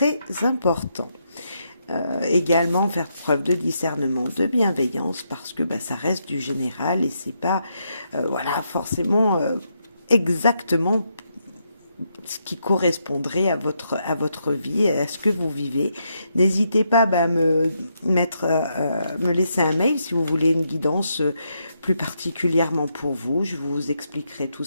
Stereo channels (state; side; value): inverted; both; correlation -0.80